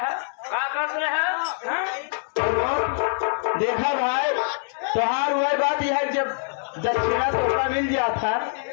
क्या कर रहे हैं। देखा भाई त्योहार हुआ बात यह है, जब दक्षिणा तोहफा मिल जाता,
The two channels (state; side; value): silent; right; digital silence